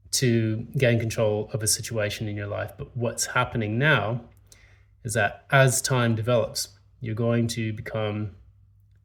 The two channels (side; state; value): both; identical; correlation 1.00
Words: to gain control of a situation in your life. But what's happening now is that as time develops, you're going to become